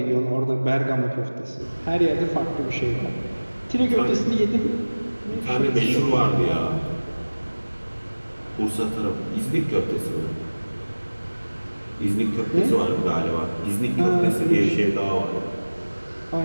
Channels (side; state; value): both; inverted; correlation -1.00